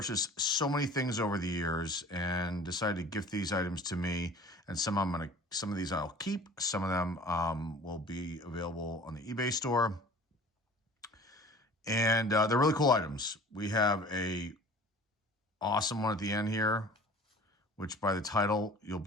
so many things over the years, and decided to gift these items to me. And some of these I'll keep. Some of them will be available on the eBay store, and they're really cool items. We have a awesome one at the end here, which by the title, you'll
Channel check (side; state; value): both; normal; correlation 0.45